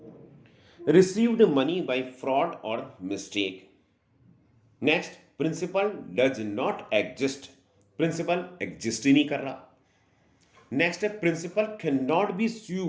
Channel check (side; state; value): both; identical; correlation 1.00